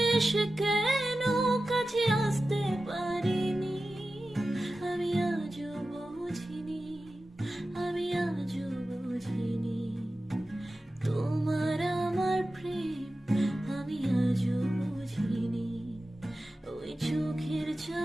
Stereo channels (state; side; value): normal; both; correlation 0.94